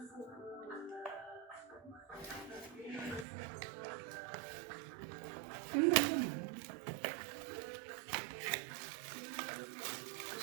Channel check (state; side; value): drops out; left; at 3.2 s